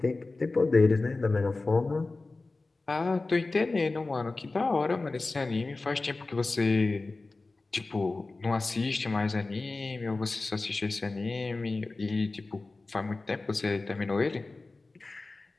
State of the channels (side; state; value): right; quieter; 3.4 dB